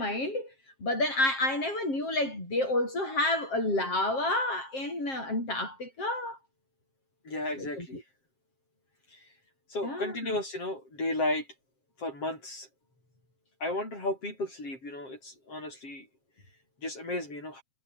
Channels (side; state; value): right; late; 7.5 ms